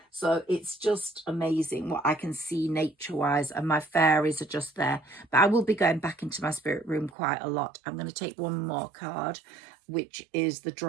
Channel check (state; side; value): drops out; left; at 7.1 s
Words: so it's just amazing what I can see nature wise, and my fairies are just there. But I will be going back into my spirit room quite a lot. I'm going to take one more card, which is the